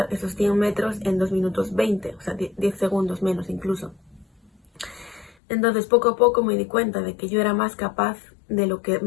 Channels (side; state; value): right; drops out; at 5.3 s